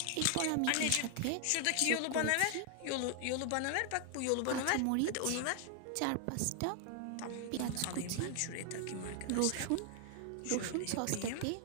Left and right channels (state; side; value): different; both; correlation 0.00